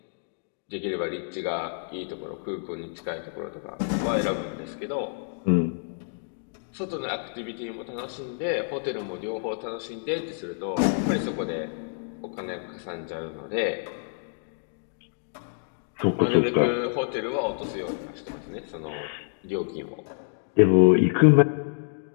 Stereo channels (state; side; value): silent; right; digital silence